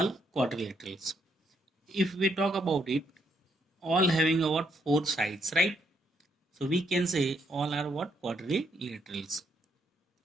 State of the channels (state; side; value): normal; both; correlation 0.73